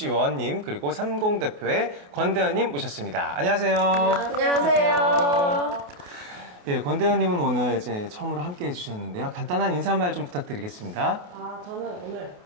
그리고 30 대표의 권대현님 모셨습니다. 안녕하세요. 안녕하세요. 예, 권대현님은 오늘 이제 처음으로 함께 해주셨는데요. 간단한 인사말 좀 부탁드리겠습니다. 저는 오늘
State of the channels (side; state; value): left; late; 28 ms